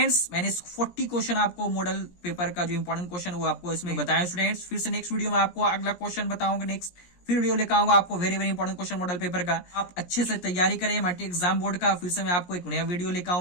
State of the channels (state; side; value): late; right; 17 ms